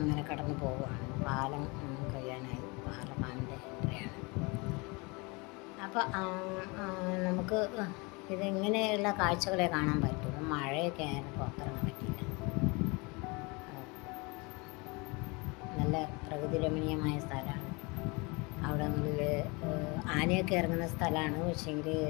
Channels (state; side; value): quieter; right; 27.7 dB